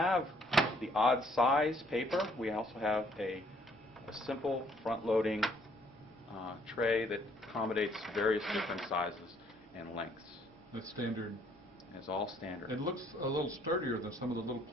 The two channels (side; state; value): both; normal; correlation 0.64